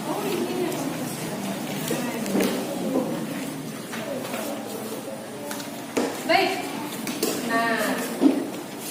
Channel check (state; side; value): identical; both; correlation 1.00